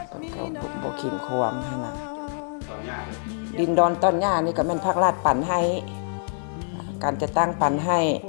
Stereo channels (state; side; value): silent; right; digital silence